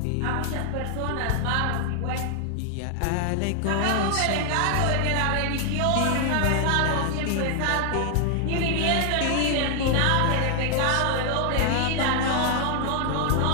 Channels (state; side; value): different; both; correlation 0.00